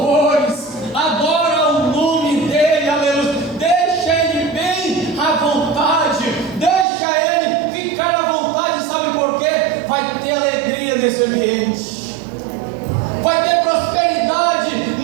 adora o nome dele, aleluia. Deixa ele bem à vontade, deixa ele ficar à vontade. Sabe por quê? Vai ter alegria nesse ambiente, vai ter prosperidade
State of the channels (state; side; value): drops out; left; at 6.9 s